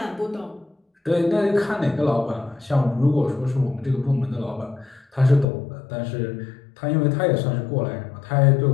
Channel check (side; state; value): right; drops out; at 5.5 s